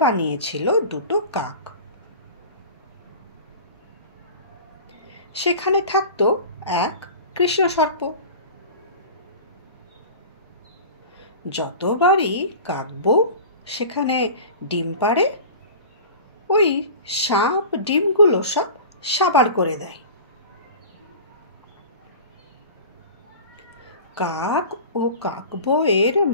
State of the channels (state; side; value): inverted; both; correlation -0.37